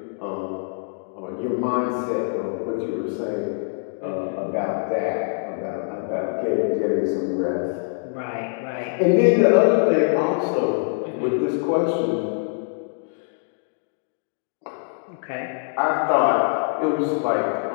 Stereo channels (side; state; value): right; silent; digital silence